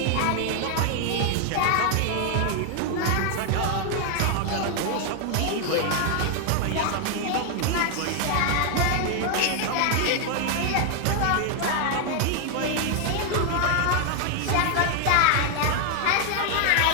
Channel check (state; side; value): different; both; correlation 0.00